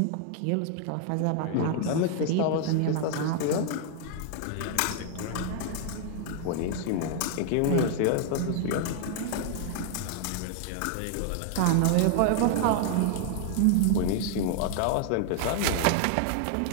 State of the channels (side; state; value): both; different; correlation 0.00